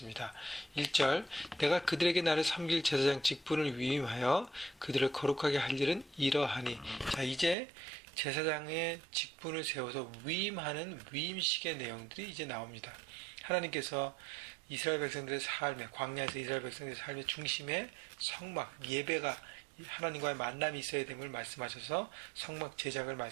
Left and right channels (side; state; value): left; drops out; at 7.6 s